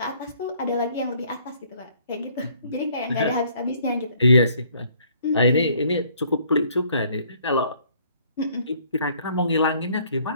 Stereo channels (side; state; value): both; inverted; correlation -0.61